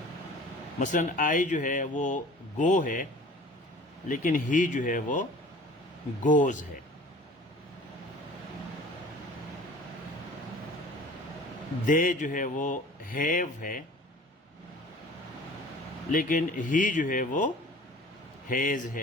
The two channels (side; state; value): both; normal; correlation 0.46